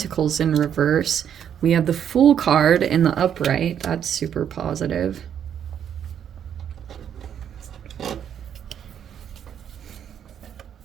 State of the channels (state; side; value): quieter; left; 9.0 dB